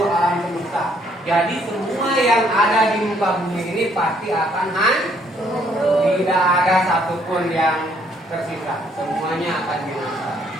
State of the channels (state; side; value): normal; both; correlation 0.67